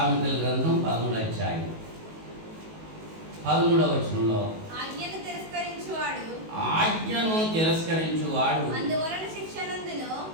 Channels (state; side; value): late; left; 19 ms